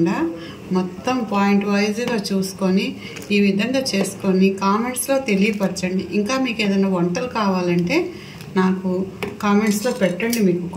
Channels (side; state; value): both; identical; correlation 1.00